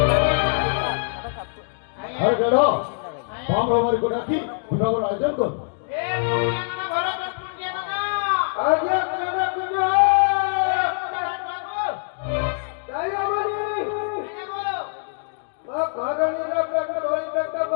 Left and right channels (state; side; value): silent; right; digital silence